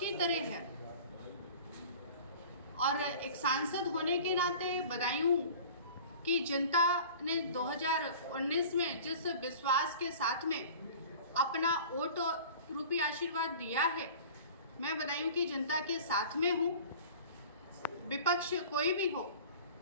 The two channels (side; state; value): both; inverted; correlation -0.42